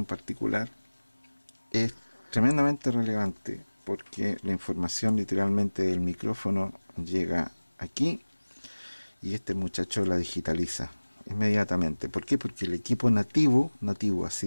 particular, es tremendamente relevante porque la información literalmente del micrófono llega aquí y este muchacho la digitaliza inmediatamente. ¿Por qué? Porque el equipo nativo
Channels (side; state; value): both; inverted; correlation -1.00